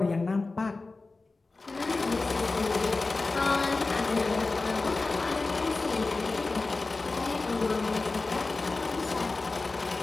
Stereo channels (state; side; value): quieter; right; 3.6 dB